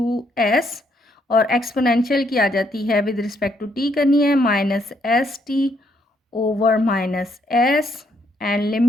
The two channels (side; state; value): both; normal; correlation 0.72